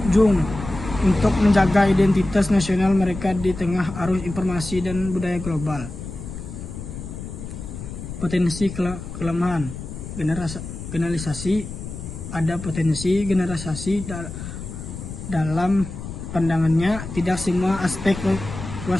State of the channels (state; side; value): noise; left; rumble, 9 dB below the sound